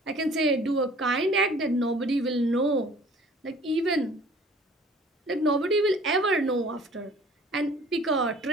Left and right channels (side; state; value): both; normal; correlation 0.51